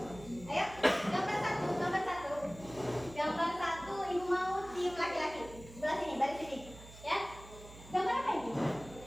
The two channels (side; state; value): right; noise; hum, 17 dB below the sound